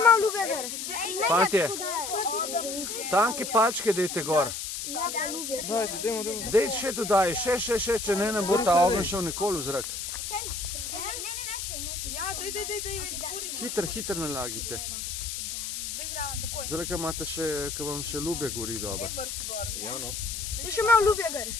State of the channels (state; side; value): noise; left; hiss, 5 dB below the sound